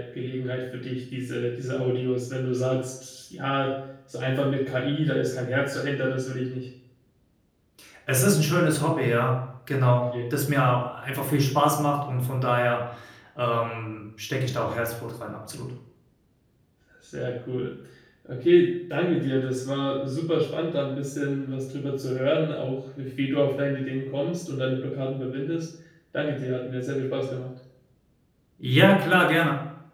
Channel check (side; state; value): both; identical; correlation 1.00